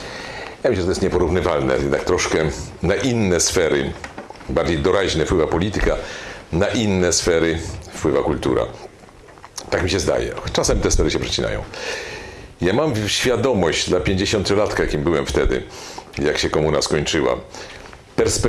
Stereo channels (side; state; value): both; identical; correlation 1.00